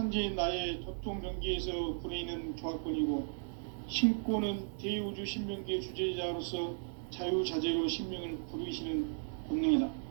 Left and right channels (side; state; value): left; silent; 54 dB below the other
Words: 나의 도통 경계에서 부리는 조화권이고, 신권은 대우주 신명계 주제자로서 자유자재로 신명을 부르시는 본능이다.